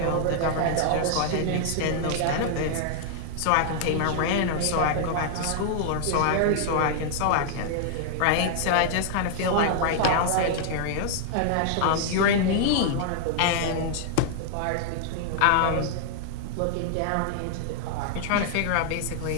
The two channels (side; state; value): both; different; correlation -0.01